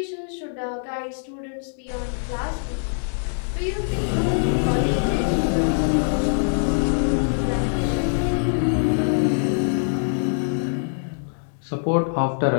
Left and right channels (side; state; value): right; silent; digital silence